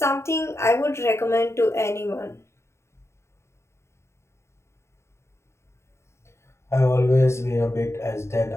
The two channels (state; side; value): late; right; 0.13 ms